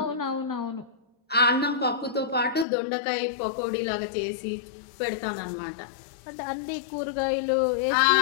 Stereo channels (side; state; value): right; drops out; at 2.7 s